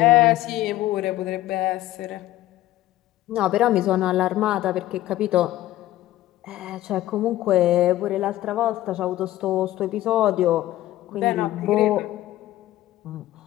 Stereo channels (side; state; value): right; quieter; 15.1 dB